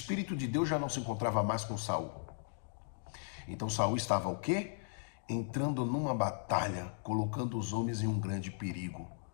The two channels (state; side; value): silent; right; digital silence